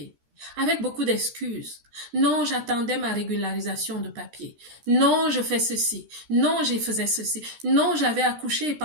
Avec beaucoup d'excuses. Non, j'attendais ma régularisation de papier. Non, je fais ceci. Non, je faisais ceci. Non, j'avais accouché et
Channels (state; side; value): late; left; 13 ms